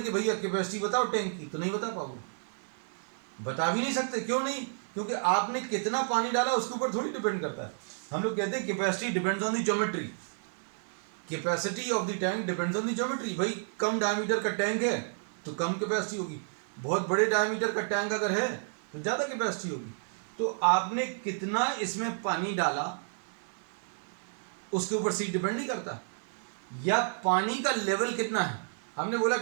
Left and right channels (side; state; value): left; silent; 57 dB below the other